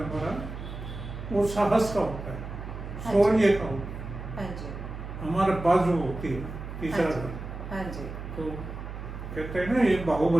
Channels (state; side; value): noise; right; hum, 9 dB below the sound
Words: हमारा वो साहस का होता है, हाँ शौर्य का होता है, हाँ जी। हमारे बाजू होती है तीसरा हाँ जी। घर। हाँ जी। तो कहते हैं ना ये